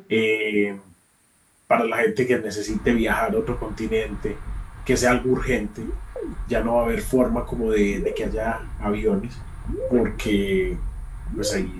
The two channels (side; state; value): both; identical; correlation 1.00